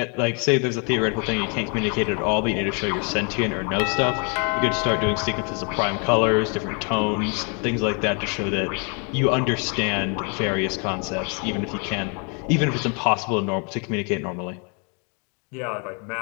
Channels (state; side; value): quieter; right; 36.5 dB